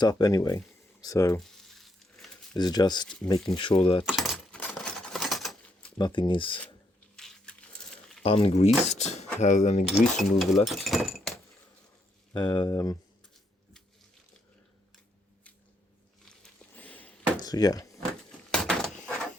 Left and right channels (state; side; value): normal; both; correlation 0.76